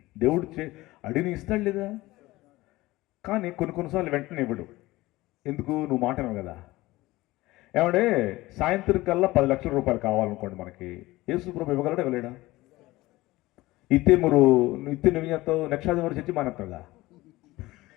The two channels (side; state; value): right; quieter; 18.9 dB